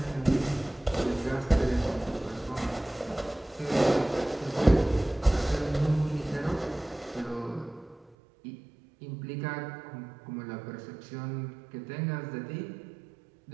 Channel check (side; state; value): left; drops out; at 8.2 s